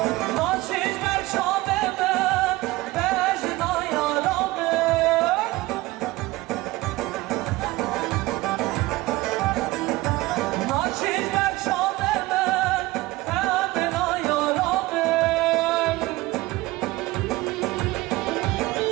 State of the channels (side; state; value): left; quieter; 19.4 dB